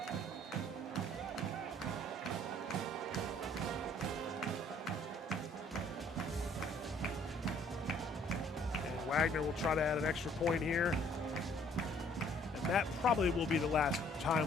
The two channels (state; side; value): normal; both; correlation 0.60